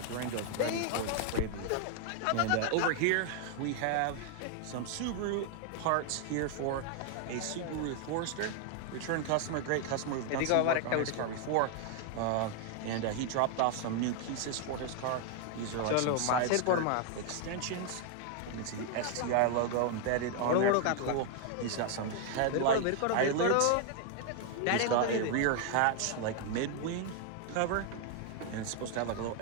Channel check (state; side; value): different; both; correlation 0.00